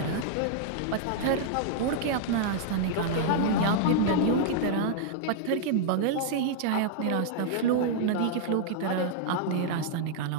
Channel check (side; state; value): both; different; correlation -0.01